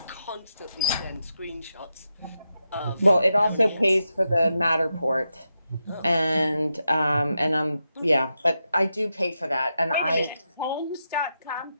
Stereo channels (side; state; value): both; inverted; correlation -0.87